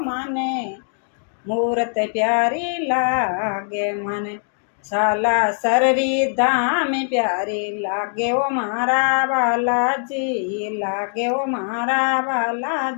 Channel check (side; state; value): right; silent; digital silence